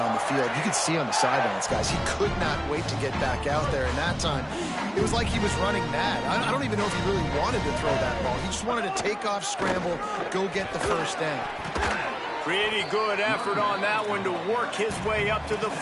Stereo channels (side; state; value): both; identical; correlation 1.00